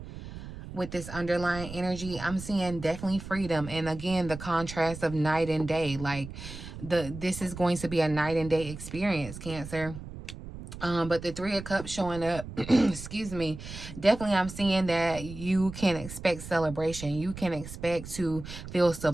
With this underlying energy, I'm seeing definitely freedom. And again, the contrast of night and day. Like, this is going to be a night and day experience, Cancer. But the 3 of Cups showing up, excuse me, definitely I'm seeing that you can expect celebration. You can expect to feel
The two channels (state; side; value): noise; right; rumble, 12 dB below the sound